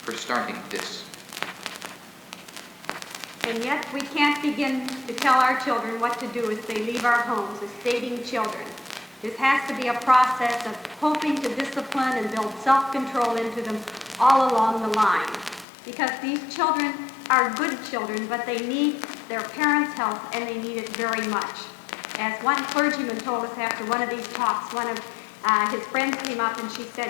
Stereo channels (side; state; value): right; drops out; at 15.7 s